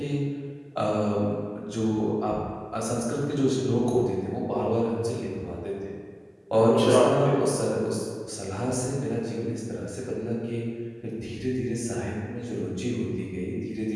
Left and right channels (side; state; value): both; identical; correlation 1.00